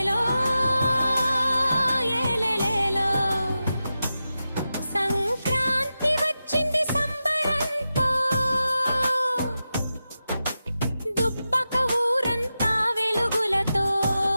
ఏలేలేలో సంక్రాంతి వచ్చింది సంబరంతో దుబ్బక ఊరంతా వెలుగులతో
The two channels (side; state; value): both; inverted; correlation -0.91